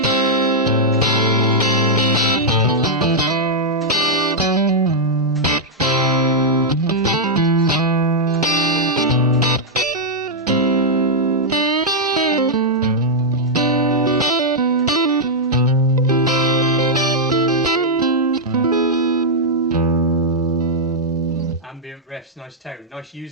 Riffs, nice tone, nice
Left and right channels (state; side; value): normal; both; correlation -0.05